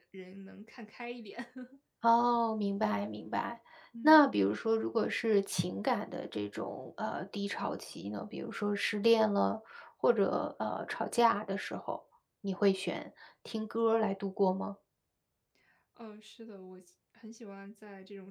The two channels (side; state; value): both; identical; correlation 1.00